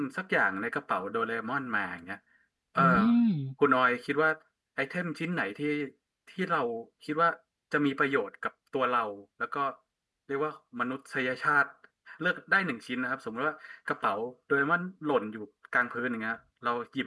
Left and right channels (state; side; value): identical; both; correlation 1.00